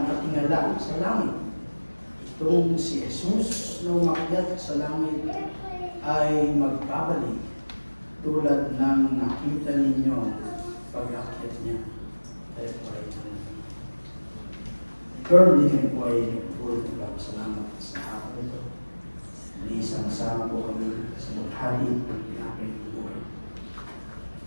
sa langit? Itong si Jesus na umakyat sa langit ay magbabalik tulad ng nakita ninyo pag-akyat niya. Tayo po ay currently kami po ay nagpulot ng salamat sa hapon ito. Isang-sama po kami sa maghali ng pinakit buhay.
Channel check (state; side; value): inverted; both; correlation -1.00